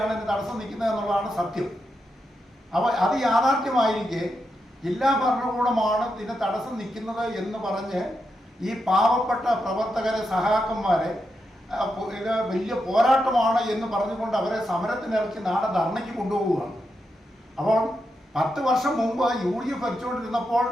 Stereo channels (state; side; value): normal; both; correlation 0.85